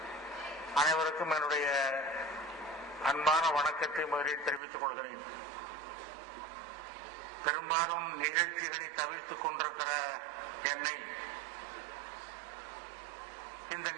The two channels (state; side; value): drops out; left; at 4.6 s